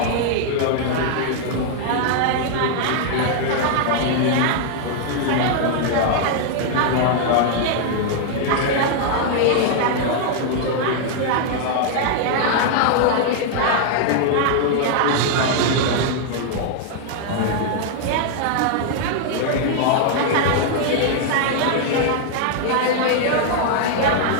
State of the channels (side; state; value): both; different; correlation 0.00